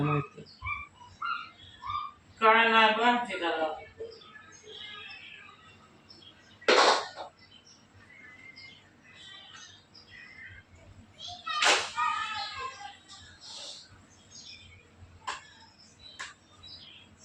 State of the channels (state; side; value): identical; both; correlation 1.00